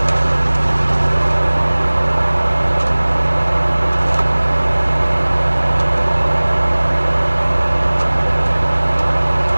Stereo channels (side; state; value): both; inverted; correlation -1.00